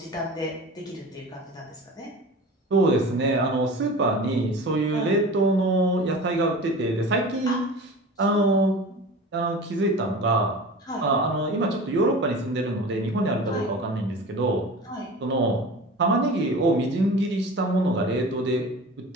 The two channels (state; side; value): normal; both; correlation 0.36